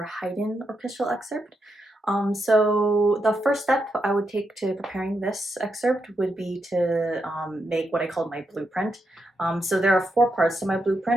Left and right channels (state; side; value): normal; both; correlation 0.83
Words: Haydn orchestral excerpt. So the first step I would take to preparing this excerpt would be to make what I call my blueprint. So there are four parts to my